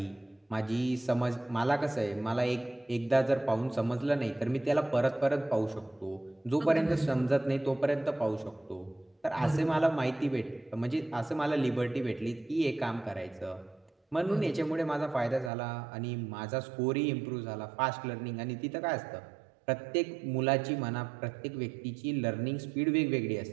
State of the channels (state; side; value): drops out; left; at 15.5 s